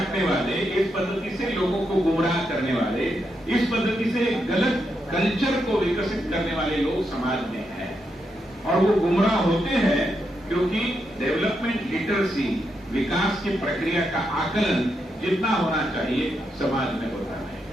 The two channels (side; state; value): both; normal; correlation 0.82